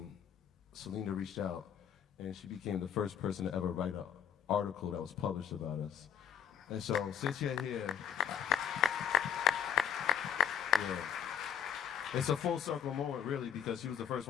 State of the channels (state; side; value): quieter; right; 8.5 dB